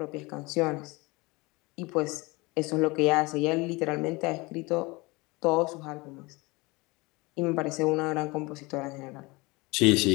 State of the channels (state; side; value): quieter; right; 24.5 dB